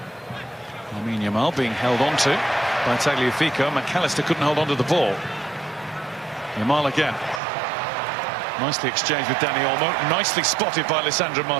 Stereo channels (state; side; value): drops out; left; at 7.4 s